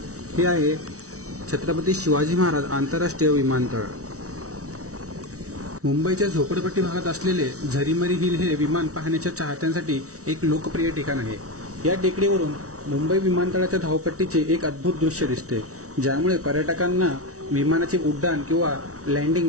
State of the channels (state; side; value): late; left; 0.65 ms